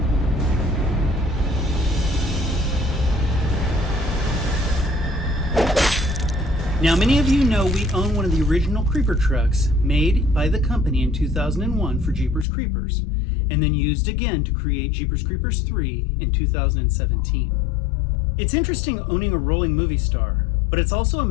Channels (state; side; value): drops out; right; at 12.5 s